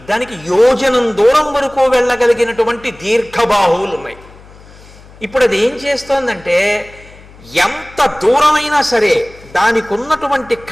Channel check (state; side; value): noise; left; hum, 22 dB below the sound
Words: దానికి యోజనం దూరం వరకు వెళ్ళగలిగినటువంటి దీర్ఘబాహువులు ఉన్నాయి. ఇప్పుడు అది ఏం చేస్తోందంటే ఎంత దూరమైనా సరే దానికి ఉన్నటువంటి